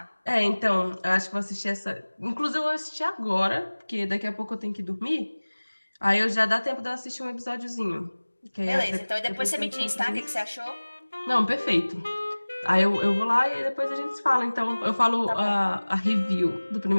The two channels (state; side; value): inverted; both; correlation -1.00